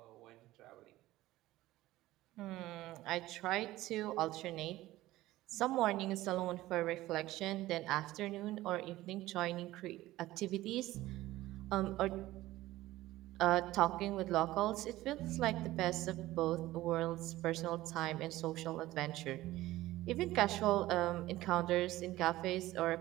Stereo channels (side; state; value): left; quieter; 16.6 dB